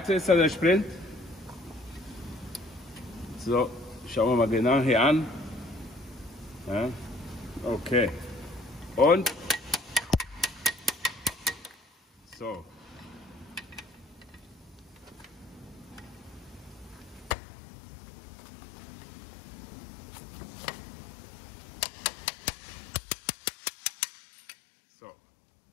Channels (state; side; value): drops out; right; at 17.4 s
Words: ist der Sprint. So, schauen wir mal genau hier an. Ja, okay. Und so. So.